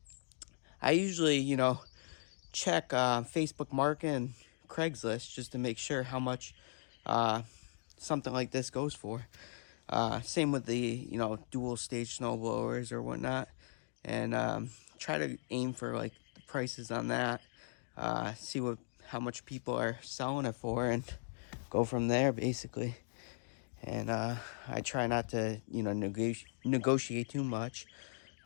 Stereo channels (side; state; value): right; silent; digital silence